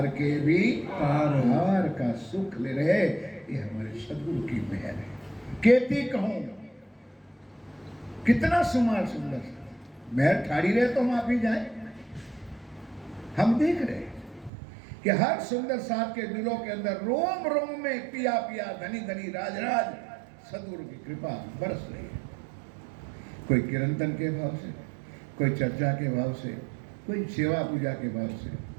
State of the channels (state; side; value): drops out; left; at 14.5 s